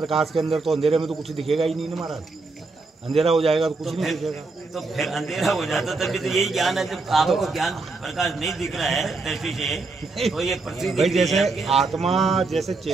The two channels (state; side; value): quieter; left; 3.7 dB